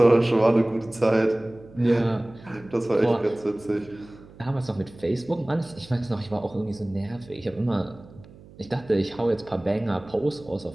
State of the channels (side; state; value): right; noise; hum, 22 dB below the sound